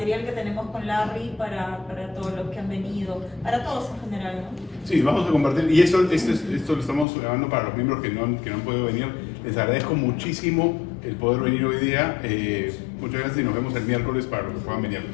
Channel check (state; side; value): drops out; right; at 7.1 s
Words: que tenemos con Larry para todos los que han venido, para todos en general, ¿no? Sí, vamos a compartir, y esto lo estamos grabando para los miembros que no han podido venir. Les agradezco muchísimo el poder venir hoy día. Muchas gracias y nos vemos el miércoles para los que puedan venir.